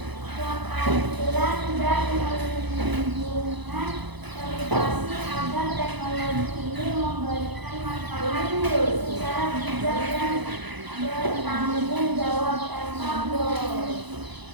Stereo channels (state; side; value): late; left; 1.0 ms